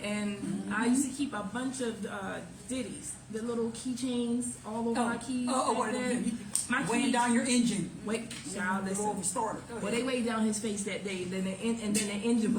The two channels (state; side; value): identical; both; correlation 1.00